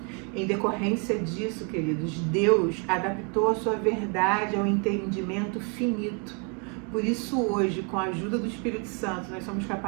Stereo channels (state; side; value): quieter; left; 34.3 dB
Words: Em decorrência disso, queridos, Deus adaptou a sua verdade ao entendimento finito. Por isso hoje, com a ajuda do Espírito Santo, nós somos